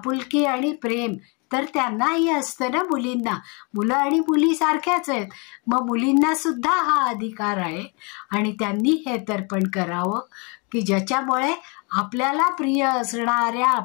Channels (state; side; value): quieter; right; 31.9 dB